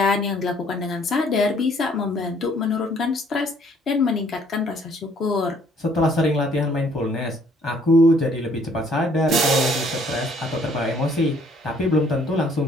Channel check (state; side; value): normal; both; correlation 0.62